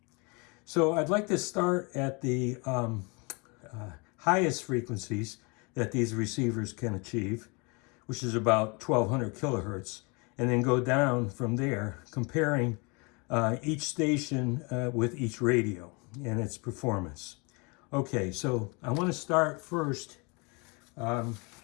So I'd like to start at the highest frequencies that these receivers can achieve, which is about 1200 kilohertz, and then go down from there, comparing each station with each radio and its performance. Okay, so I want to start first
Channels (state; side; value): quieter; right; 30.2 dB